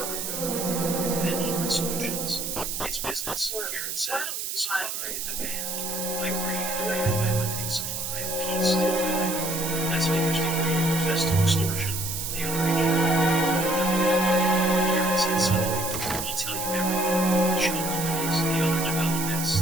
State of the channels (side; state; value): right; noise; hiss, 4 dB below the sound